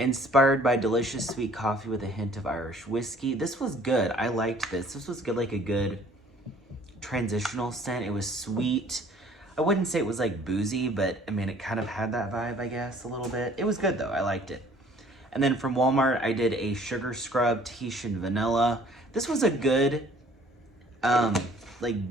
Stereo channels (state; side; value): normal; both; correlation 0.56